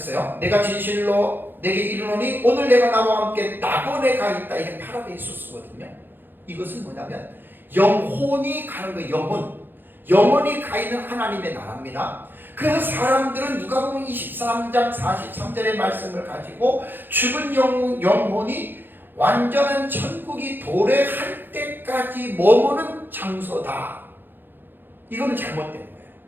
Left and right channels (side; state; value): left; late; 0.096 ms